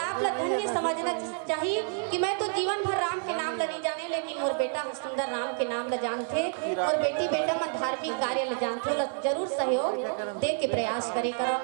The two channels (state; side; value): silent; left; 59 dB below the other